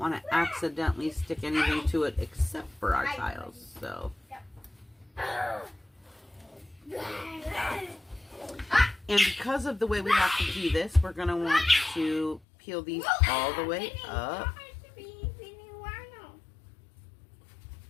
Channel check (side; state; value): right; drops out; at 12.4 s